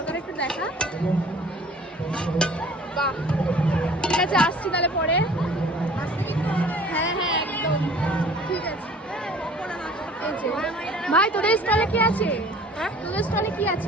একটু দেখা। বাহ, ঠিক আছে, আসছি তাহলে পরে। হ্যাঁ হ্যাঁ একদম ঠিক আছে। এই যে। ভাই তোদের স্টলে কি আছে? হ্যাঁ? তোদের স্টলে কি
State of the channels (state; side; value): normal; both; correlation 0.49